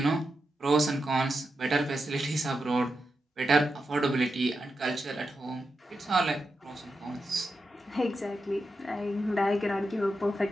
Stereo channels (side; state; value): both; normal; correlation 0.88